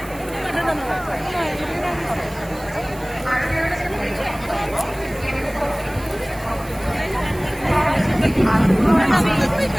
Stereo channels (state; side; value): noise; right; hiss, 20 dB below the sound